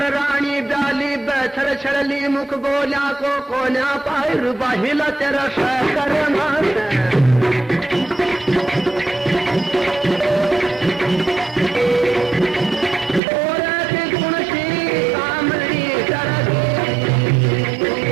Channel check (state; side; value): drops out; left; at 13.2 s